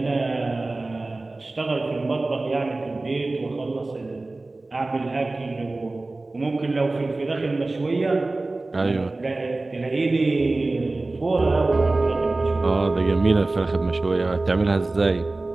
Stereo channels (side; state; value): left; quieter; 3.1 dB